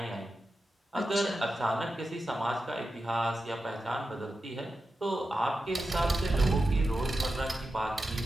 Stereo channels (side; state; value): both; normal; correlation 0.91